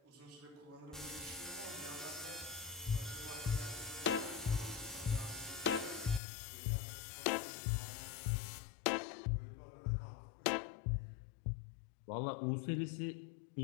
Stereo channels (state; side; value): drops out; right; at 6.2 s